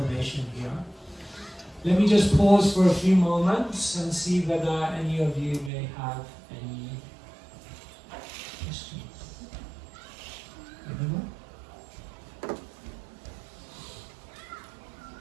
here. Let me just pause for a few moments and see whether any of you may have any questions. Anyone?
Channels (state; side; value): drops out; left; at 5.7 s